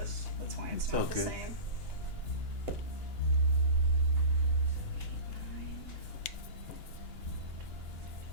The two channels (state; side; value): late; right; 2.9 ms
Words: That's why it's not the okay. same.